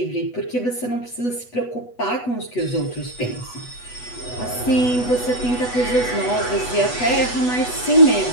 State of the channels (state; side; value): late; right; 8.1 ms